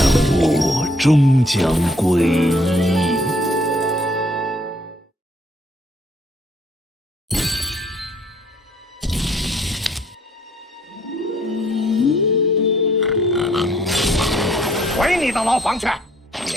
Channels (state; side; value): normal; both; correlation 0.64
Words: 万物终将归一。回你的牢房去，